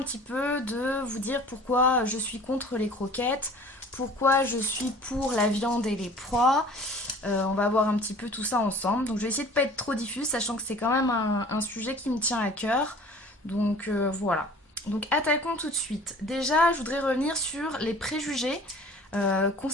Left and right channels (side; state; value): both; normal; correlation 0.47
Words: petit peu de vous dire pourquoi je suis contre les croquettes, pourquoi je suis pour la viande et les proies. On va voir un petit peu tout ça ensemble. Donc je vais essayer de ne pas être trop diffuse, sachant que c'est quand même un sujet qui me tient à cœur. Voilà. Donc attaquons tout de suite. Déjà, je voudrais revenir sur les préjugés qu'ont